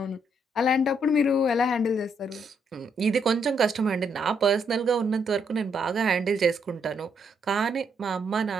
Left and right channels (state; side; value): normal; both; correlation 0.75